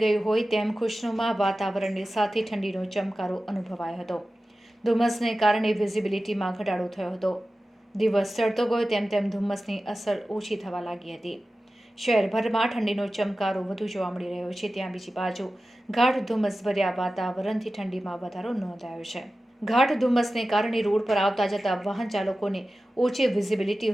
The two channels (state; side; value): normal; both; correlation 0.94